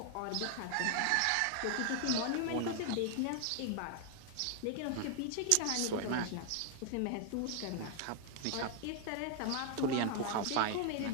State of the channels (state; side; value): different; both; correlation 0.00